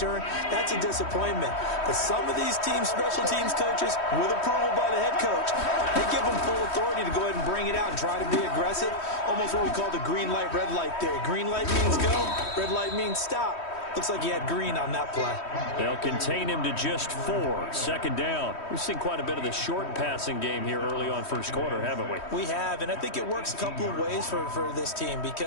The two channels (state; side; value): late; right; 3.1 ms